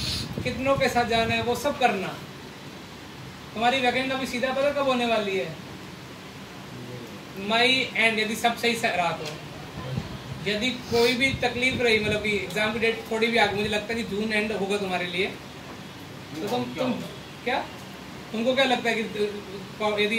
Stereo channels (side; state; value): both; identical; correlation 1.00